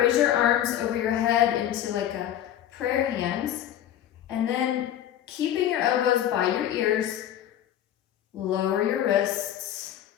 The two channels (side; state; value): right; quieter; 11.2 dB